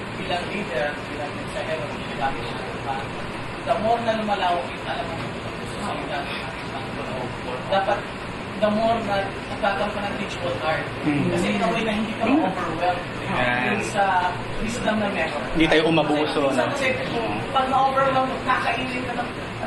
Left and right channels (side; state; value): both; identical; correlation 1.00